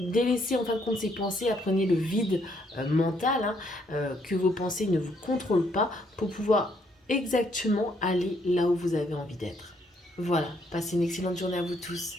en fin de compte ces pensées, apprenez le vide mental, hein, que vos pensées ne vous contrôlent pas pour pouvoir exactement aller là où vous avez envie d'être. Voilà, passez une excellente journée à vous tous.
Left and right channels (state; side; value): normal; both; correlation 0.70